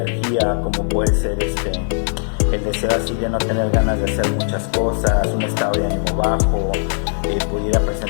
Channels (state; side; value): silent; right; 61 dB below the other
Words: como puede ser el deseo así de no tener ganas de hacer muchas cosas, un estado de ánimo bajo, pudiera